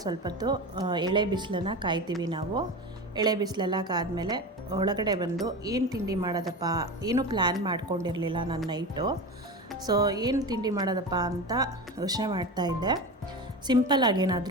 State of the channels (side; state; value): both; normal; correlation 0.26